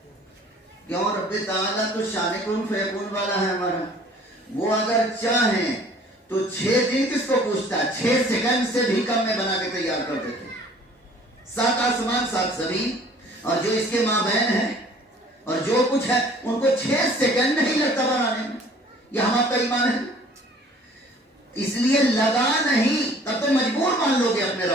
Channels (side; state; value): both; normal; correlation 0.53